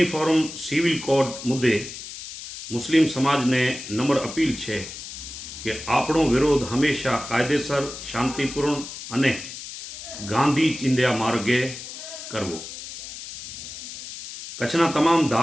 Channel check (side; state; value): left; noise; hiss, 11 dB below the sound